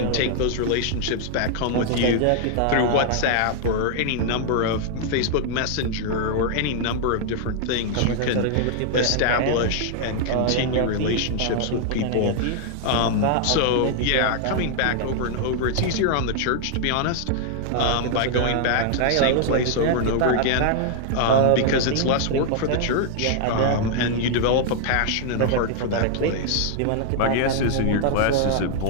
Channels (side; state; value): both; different; correlation -0.01